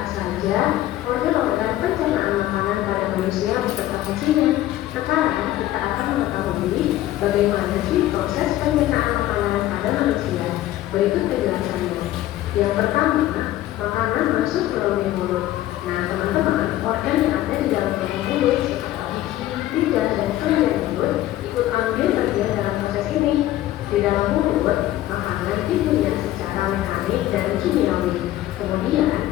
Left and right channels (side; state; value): right; quieter; 14.5 dB